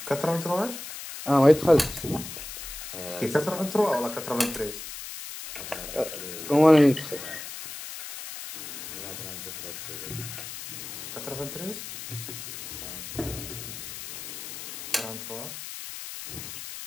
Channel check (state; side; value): noise; left; hiss, 9 dB below the sound